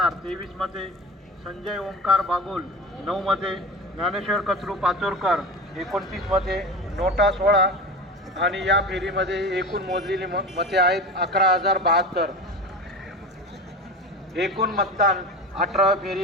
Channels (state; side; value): normal; both; correlation 0.30